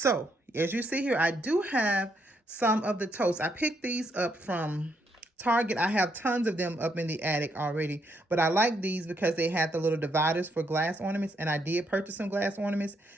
as you see here, I do have some of the totes. I picked these up from Target. I have tons of them up in the attic already, but I like these because they had the little dividers for glass ornaments, and I did purchase some glass ornaments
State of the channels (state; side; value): normal; both; correlation 0.75